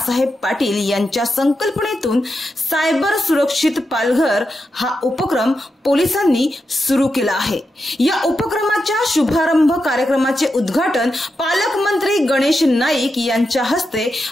पाटील यांच्या संकल्पनेतून सायबर सुरक्षित पालघर हा उपक्रम पोलिसांनी सुरू केला आहे। या उपक्रमाच्या शुभारंभ कार्यक्रमाचे उद्घाटन पालकमंत्री गणेश नाईक यांच्या हस्ते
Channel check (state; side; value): normal; both; correlation 0.87